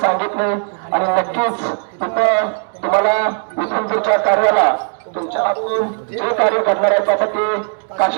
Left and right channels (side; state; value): left; silent; 59 dB below the other